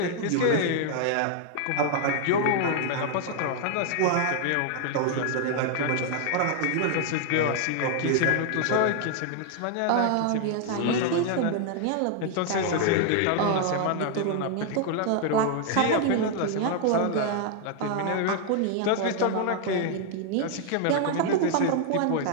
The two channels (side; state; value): both; different; correlation 0.00